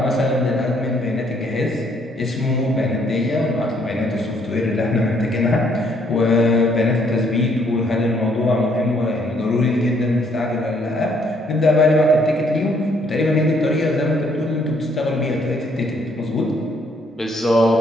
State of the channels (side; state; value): both; normal; correlation 0.67